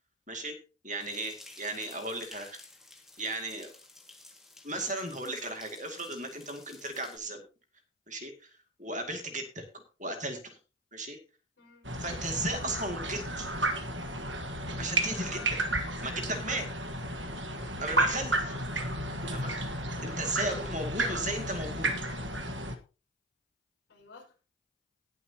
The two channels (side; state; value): both; normal; correlation 0.17